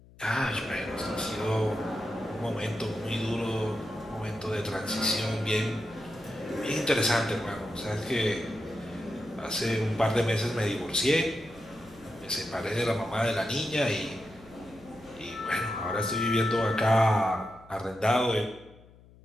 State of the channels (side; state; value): left; noise; hum, 24 dB below the sound